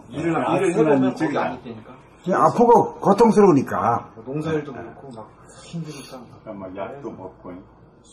일을 해보면 거기 안 있다니까. 아프고 고통스러우니까. 농사일도 그렇고 막 힘드니까. 막 약도 먹고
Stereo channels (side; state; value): both; identical; correlation 1.00